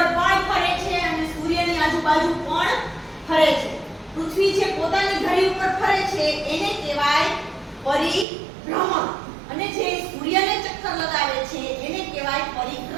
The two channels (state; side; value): drops out; left; at 8.2 s